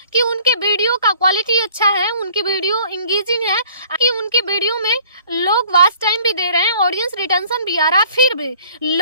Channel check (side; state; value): both; inverted; correlation -0.54